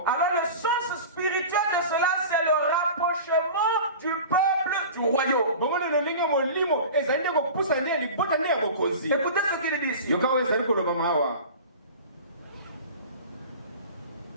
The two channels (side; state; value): both; inverted; correlation -0.36